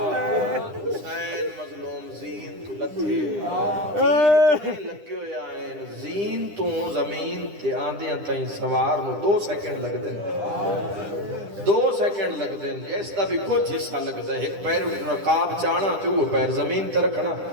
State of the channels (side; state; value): left; late; 9.9 ms